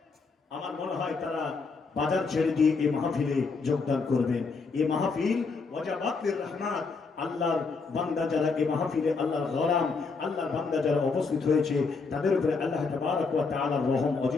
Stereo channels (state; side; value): quieter; right; 4.5 dB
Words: আমার মনে হয় তারা বাজার ছেড়ে দিয়ে এই মাহফিলে যোগদান করবেন। এই মাহফিল ওয়াজাবাতুর রহমাত, আল্লাহর বান্দা যারা এই মাহফিলে, আল্লাহর গোলাম, আল্লাহর বান্দা যারা উপস্থিত হয়েছে, তাদের উপরে আল্লাহ তাবারক ওয়া তাআলার রহম